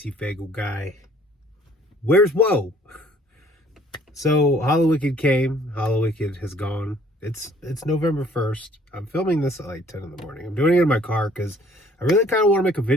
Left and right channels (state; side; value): normal; both; correlation 0.58